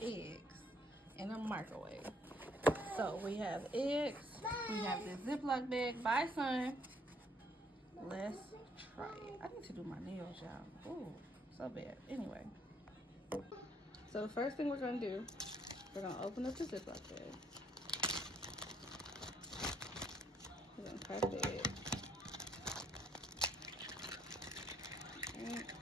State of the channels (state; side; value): normal; both; correlation 0.66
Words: eggs in a microwave? So we have eggs. We have this Ziploc bag. Bye, son. Let's try it. I need to do my nails, y'all. Oh, so bad. Anyway. So the first thing we're going to do, we're going to open up the Ziploc bag. We're going to crack the egg.